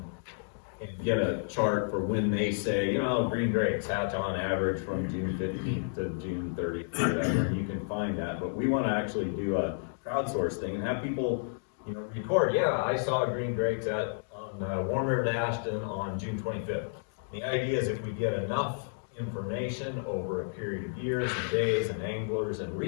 and get a chart for when they say, green drakes hatch on average from June 15th to June 30th or whatever, and you can find that. But we want to actually do a crowdsource thing and have people, record, I saw green drakes on Warm River to Ashton on June 25th. The idea is if we get enough information over a period of years and days and anglers and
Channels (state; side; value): silent; right; digital silence